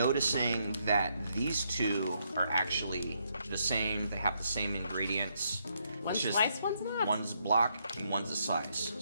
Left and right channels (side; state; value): both; inverted; correlation -0.76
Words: that these two are actually the same. They have the same ingredients. One's It's just sliced, one's not. One's block and one's a slice.